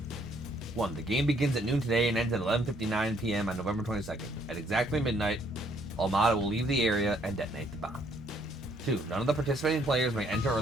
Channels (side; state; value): right; noise; rumble, 22 dB below the sound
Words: 1. The game begins at noon today and ends at 11:59 p.m. on November 22nd. At exactly midnight, Almada will leave the area and detonate the bomb. 2. None of the participating players may enter or